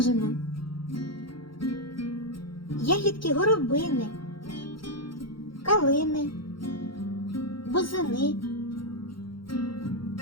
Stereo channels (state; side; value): late; right; 0.73 ms